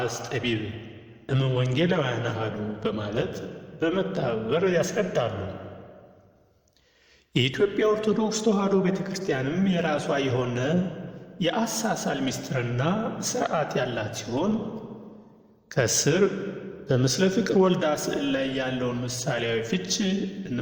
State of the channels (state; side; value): identical; both; correlation 1.00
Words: ጠቢብ እምወንጌላውያን አሐዱ በማለት በመተባበር ያስረዳሉ። የኢትዮጵያ ኦርቶዶክስ ተዋሕዶ ቤተ ክርስቲያንም የራሷ የሆነ የአሳሳል ምስጢርና ሥርዓት ያላት ሲሆን ከስር በምስለ ፍቅር ወልዳ ስዕል ላይ ያለውን ምሳሌያዊ ፍች